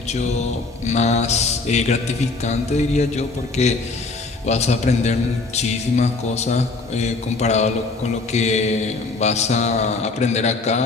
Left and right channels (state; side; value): quieter; right; 3.7 dB